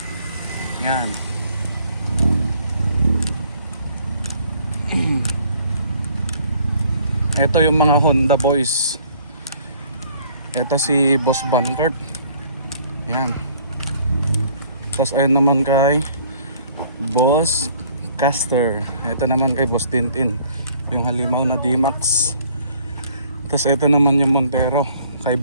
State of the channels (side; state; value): both; inverted; correlation -0.59